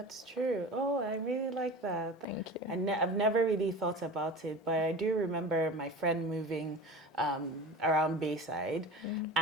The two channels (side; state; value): both; normal; correlation 0.34